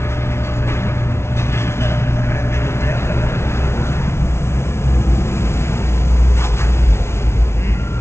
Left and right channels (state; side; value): late; right; 0.13 ms